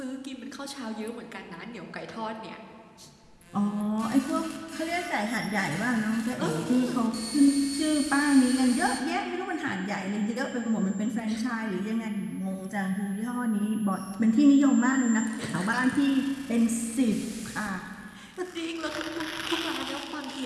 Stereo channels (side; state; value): both; identical; correlation 1.00